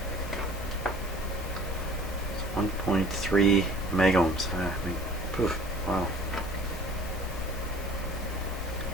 It's 1.3 megohms. Poof, wow.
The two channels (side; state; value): both; normal; correlation 0.48